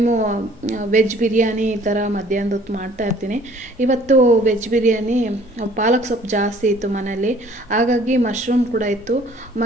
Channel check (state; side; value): normal; both; correlation 0.55